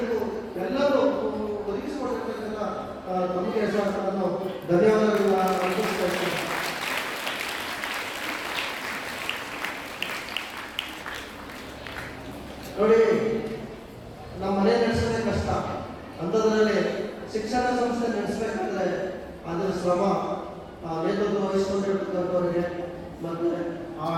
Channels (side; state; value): both; identical; correlation 1.00